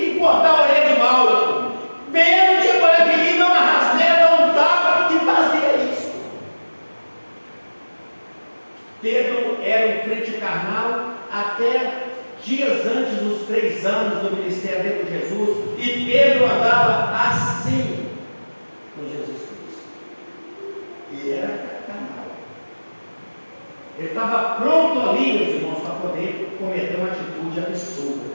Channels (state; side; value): inverted; both; correlation -1.00